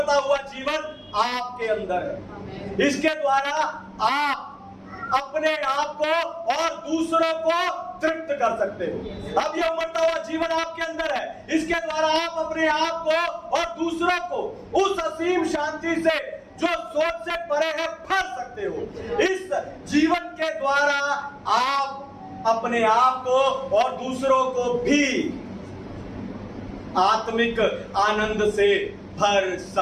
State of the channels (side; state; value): both; identical; correlation 1.00